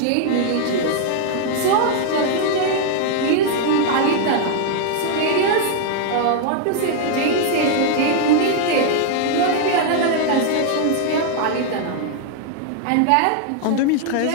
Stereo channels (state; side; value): different; both; correlation 0.00